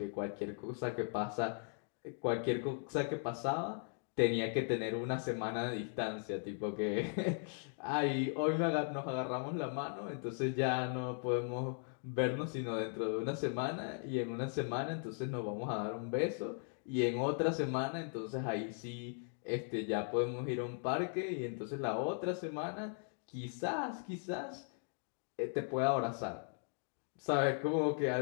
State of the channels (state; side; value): silent; right; 52 dB below the other